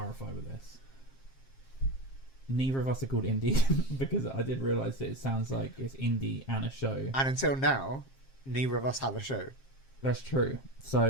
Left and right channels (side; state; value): right; late; 7.5 ms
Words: with this. Neither of us are called Indie because I did realise that it sounds like it's Indie and a show. And until now, neither of us have a show. That's true.